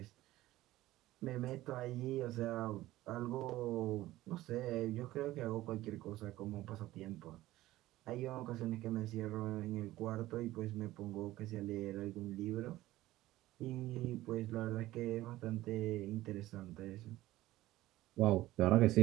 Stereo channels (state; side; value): quieter; left; 16.3 dB